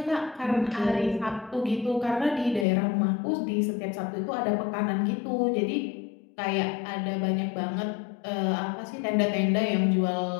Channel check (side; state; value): right; drops out; at 2.7 s